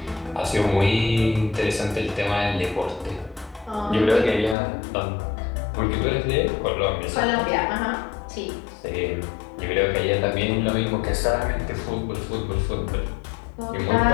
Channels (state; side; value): drops out; right; at 4.5 s